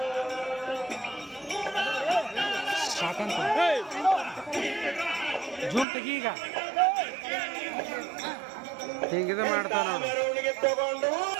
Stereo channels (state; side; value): drops out; left; at 5.9 s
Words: ಜೂಮ್ ತೆಗಿ. ಈಗ ಹಿಂಗಿದ ಮಾಡ್ತಾವ ನೋಡ್ರಿ.